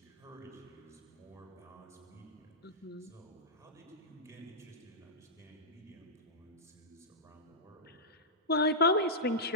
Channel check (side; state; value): both; normal; correlation -0.11